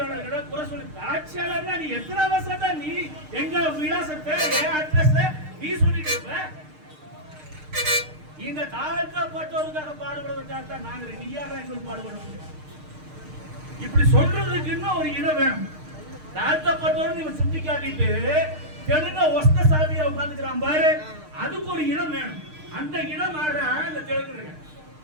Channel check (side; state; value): left; late; 6.5 ms